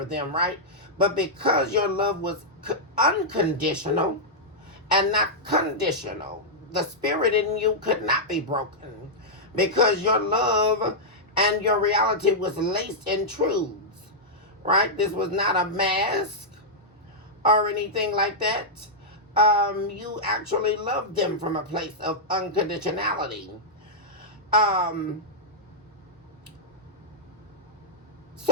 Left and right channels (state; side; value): normal; both; correlation -0.08